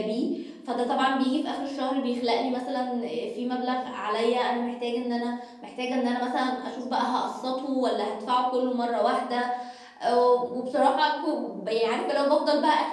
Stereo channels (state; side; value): identical; both; correlation 1.00